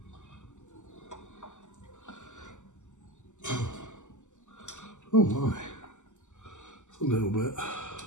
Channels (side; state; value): right; late; 0.84 ms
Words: Oh my, it's a little bit.